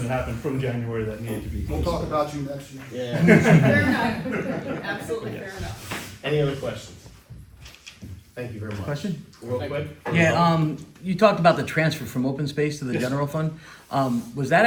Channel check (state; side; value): identical; both; correlation 1.00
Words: that happened from January that needed to be. We'll talk about you next year. Yeah. Fair enough, absolutely fair enough. Any other questions? Thank you very much. Question? Real quick? Yeah, you talked about the transfer from open space to the Yes. general fund. Was that